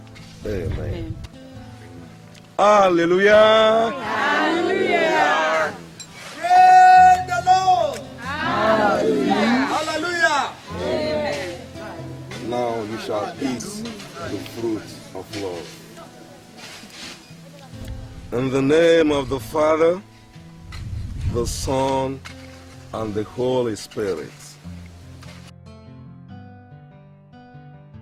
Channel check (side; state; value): both; identical; correlation 1.00